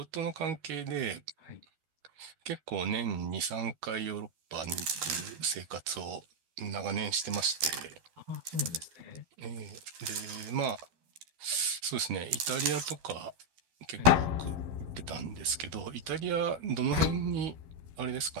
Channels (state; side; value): late; left; 12 ms